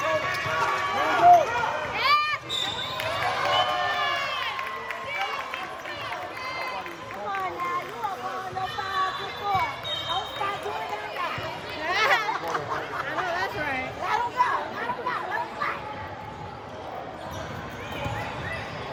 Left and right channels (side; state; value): both; identical; correlation 1.00